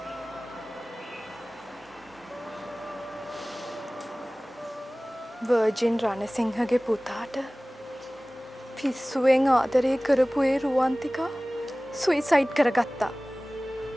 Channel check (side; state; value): both; normal; correlation 0.98